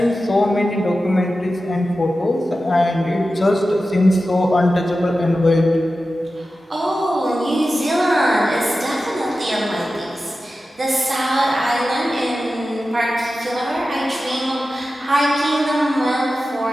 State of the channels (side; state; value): both; normal; correlation 0.93